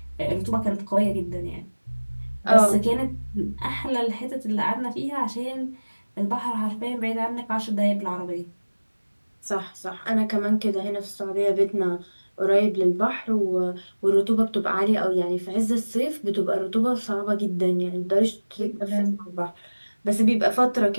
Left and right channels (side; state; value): both; inverted; correlation -1.00